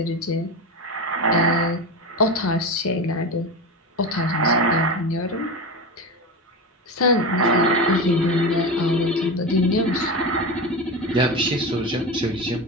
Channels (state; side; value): normal; both; correlation 0.21